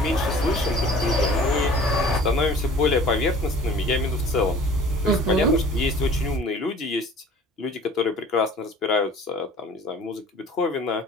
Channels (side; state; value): both; normal; correlation 0.48